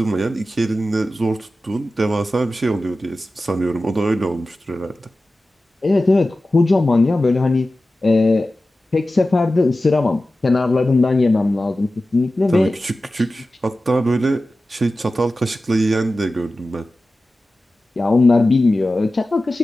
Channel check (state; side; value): normal; both; correlation 0.94